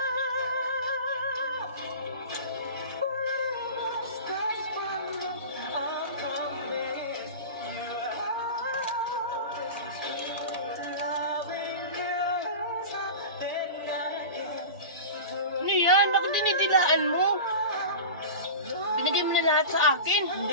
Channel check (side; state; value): both; inverted; correlation -0.31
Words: Ano yan? Bakit dinidilaan mo? Binigay mo na lahat sa akin.